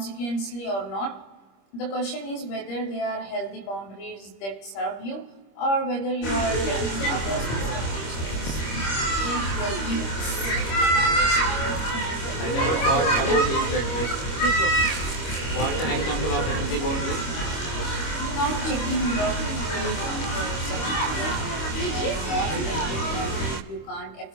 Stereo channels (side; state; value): right; late; 25 ms